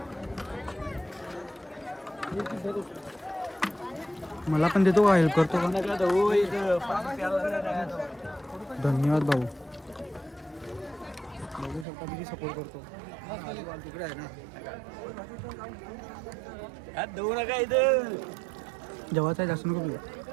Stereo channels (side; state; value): left; drops out; at 11.9 s